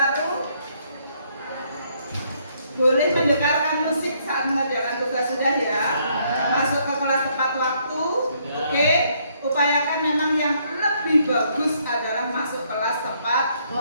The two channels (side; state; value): both; inverted; correlation -0.70